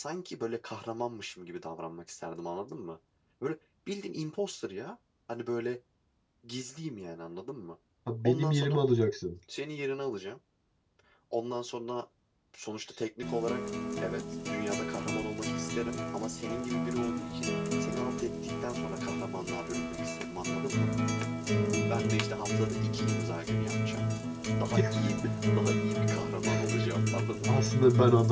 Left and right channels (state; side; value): identical; both; correlation 1.00